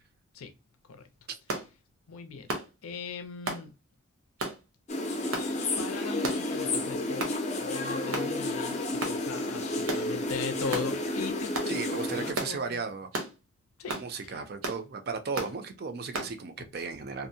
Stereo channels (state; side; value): normal; both; correlation 0.24